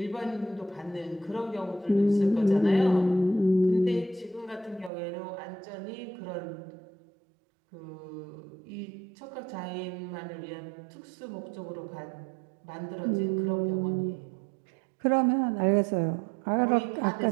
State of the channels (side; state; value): left; drops out; at 4.9 s